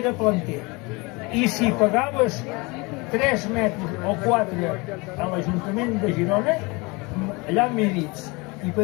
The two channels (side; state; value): right; quieter; 26.2 dB